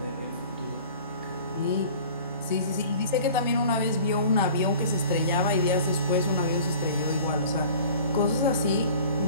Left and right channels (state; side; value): inverted; both; correlation -0.45